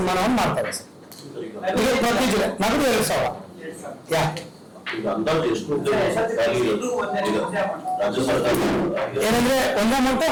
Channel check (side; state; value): both; identical; correlation 1.00